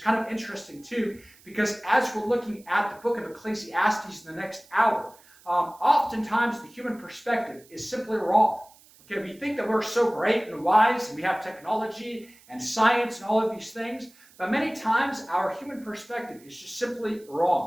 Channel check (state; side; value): noise; right; hiss, 26 dB below the sound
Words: of interesting too, because as we're looking at the book of Ecclesiastes in the next hour, oftentimes the human perspective is simply wrong. Okay, we think that we're so great and wise, and we have technology and science and all of these things, but many times our human perspective is just simply